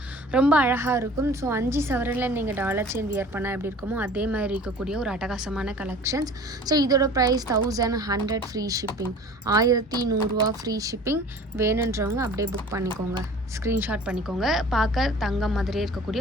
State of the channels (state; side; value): normal; both; correlation 0.44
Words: ரொம்ப அழகாக இருக்கும். ஸோ 5 சவரனில் நீங்கள் டாலர் செயின் வியர் பண்ணால் எப்படி இருக்குமோ அதே மாதிரி இருக்கக்கூடிய ஒரு அட்டகாசமான கலெக்ஷன்ஸ். ஸோ இதோட ப்ரைஸ் 1100 ஃப்ரீ ஷிப்பிங். 1100 ரூபா ஃப்ரீ ஷிப்பிங். வேணுன்றவங்க அப்படியே புக் பண்ணிக்கோங்க, ஸ்க்ரீன்ஷாட் பண்ணிக்கோங்க. பார்க்க தங்கம் மாதிரியே